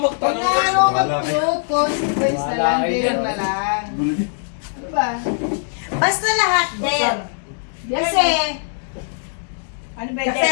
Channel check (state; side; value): silent; right; digital silence